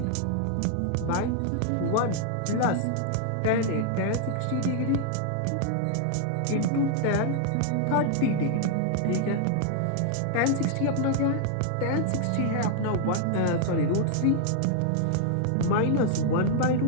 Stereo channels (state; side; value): different; both; correlation 0.00